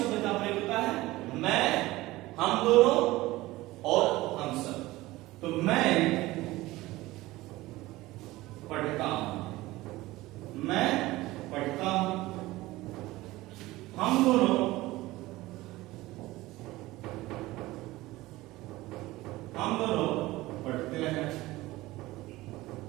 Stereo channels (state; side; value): quieter; left; 18.6 dB